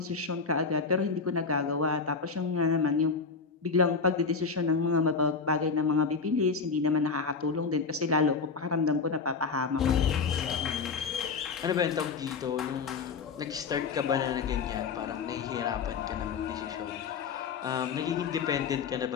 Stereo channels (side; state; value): right; quieter; 5.1 dB